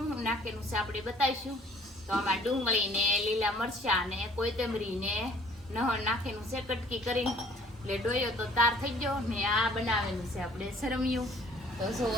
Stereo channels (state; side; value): normal; both; correlation 0.55